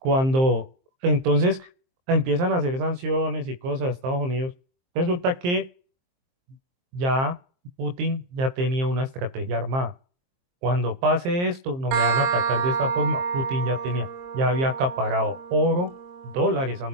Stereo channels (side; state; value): left; late; 23 ms